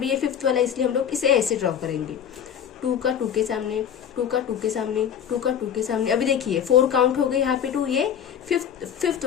ये 5th वाला, इसलिए हम लोग इसे ऐसे ड्रॉ करेंगे। 2 का 2 के सामने, 2 का 2 के सामने, 2 का 2 के सामने। अभी देखिए 4 काउंट हो गए यहाँ पे 2, ये 5th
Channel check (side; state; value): right; quieter; 8.7 dB